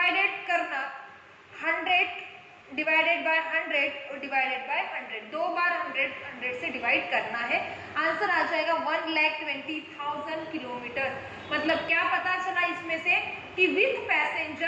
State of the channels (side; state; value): both; identical; correlation 1.00